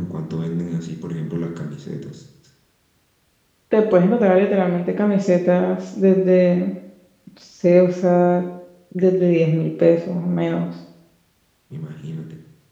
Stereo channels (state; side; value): identical; both; correlation 1.00